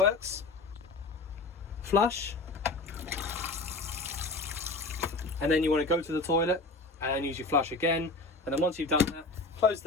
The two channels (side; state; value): right; quieter; 3.3 dB